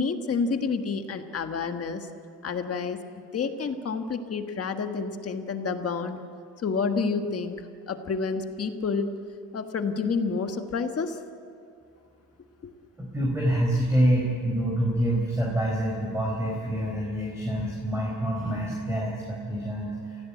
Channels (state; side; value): normal; both; correlation 0.57